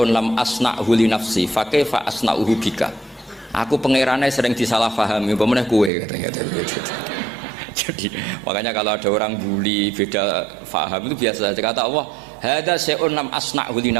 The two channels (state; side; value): drops out; left; at 5.9 s